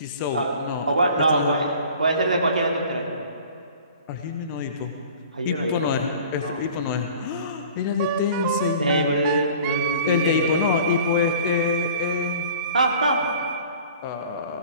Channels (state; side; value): inverted; both; correlation -0.46